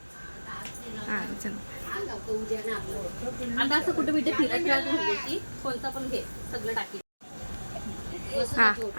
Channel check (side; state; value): both; inverted; correlation -1.00